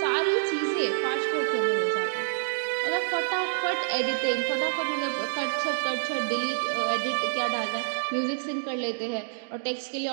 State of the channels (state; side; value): silent; left; digital silence